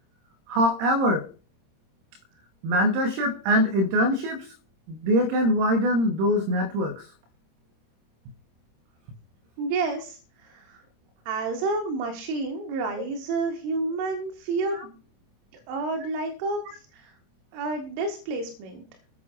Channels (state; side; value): late; left; 26 ms